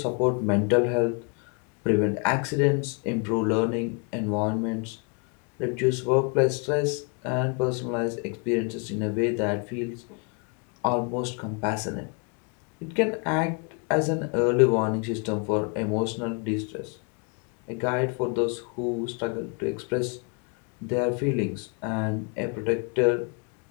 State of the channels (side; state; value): right; quieter; 35.4 dB